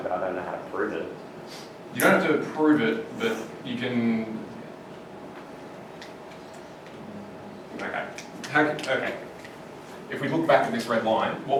but I don't know how to prove it. You don't have to prove it, but you can... Okay. If we look back at this red line, what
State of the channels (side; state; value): both; identical; correlation 1.00